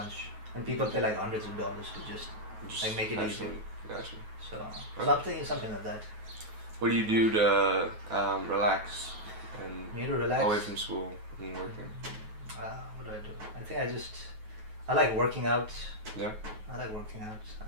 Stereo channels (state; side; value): late; left; 9.3 ms